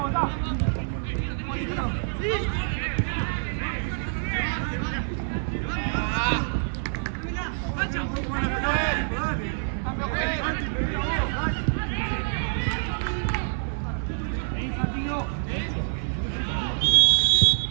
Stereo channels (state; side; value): silent; left; 57 dB below the other